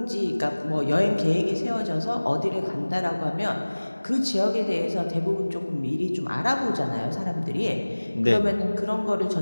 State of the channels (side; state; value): both; inverted; correlation -1.00